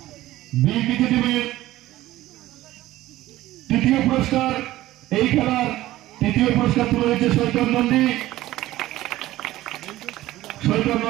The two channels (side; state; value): left; quieter; 15.9 dB